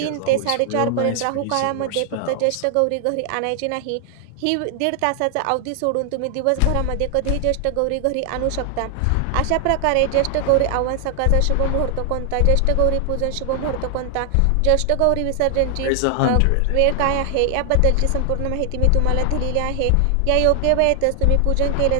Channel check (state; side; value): different; both; correlation 0.00